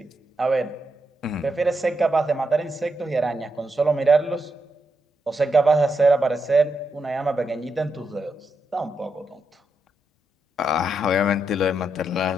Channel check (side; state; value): both; normal; correlation 0.83